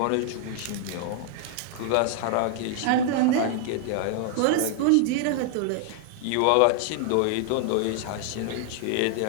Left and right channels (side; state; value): both; different; correlation 0.00